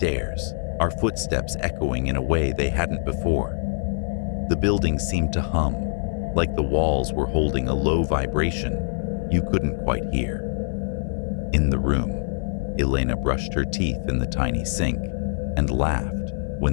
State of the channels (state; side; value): silent; right; 55 dB below the other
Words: our footsteps echoing in a way they hadn't before. The building seemed to hum, like the walls were holding a low vibration you couldn't quite hear. In the room, Elena brushed her teeth in the tiny sink and laughed